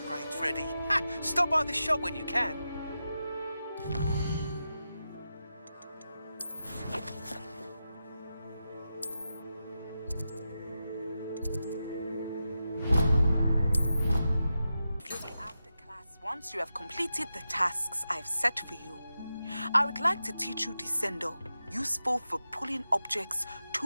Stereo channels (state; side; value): inverted; both; correlation -0.90